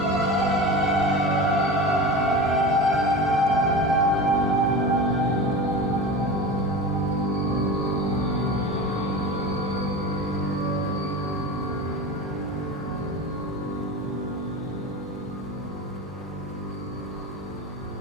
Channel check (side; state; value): both; normal; correlation 0.29